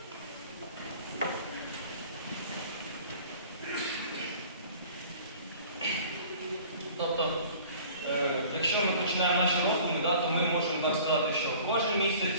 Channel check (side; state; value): both; inverted; correlation -0.47